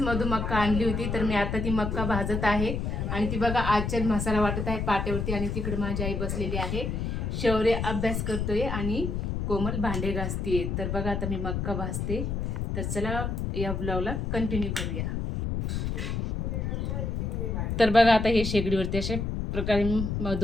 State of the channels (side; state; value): left; noise; rumble, 2 dB below the sound